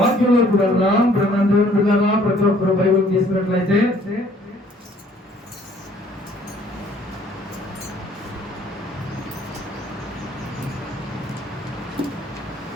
వెళ్దాం. దేవుని బిడ్డలారా, ప్రతి ఒక్కరు బైబిల్ తీసుకున్నట్లయితే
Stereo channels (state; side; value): normal; both; correlation 0.59